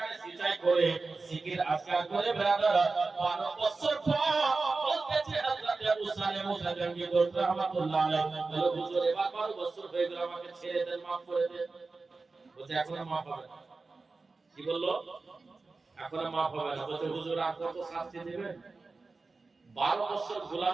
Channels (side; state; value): left; quieter; 3.9 dB